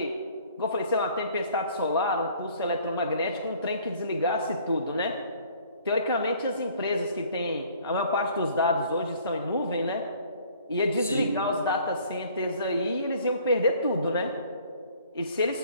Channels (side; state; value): both; inverted; correlation -0.56